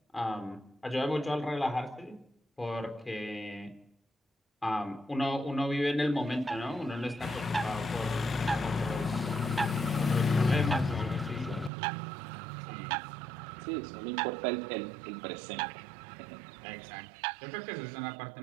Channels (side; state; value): left; drops out; at 11.7 s